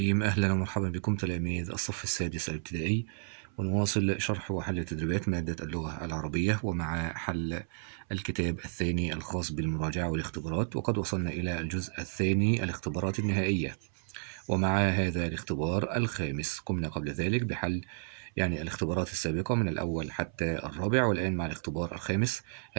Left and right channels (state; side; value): silent; left; 57 dB below the other